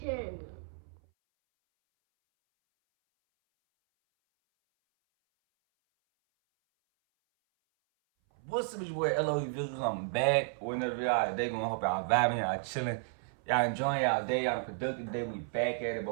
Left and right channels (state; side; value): silent; left; 56 dB below the other